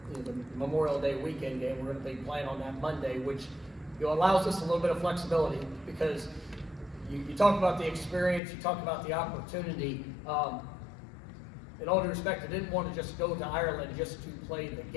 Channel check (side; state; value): right; drops out; at 8.4 s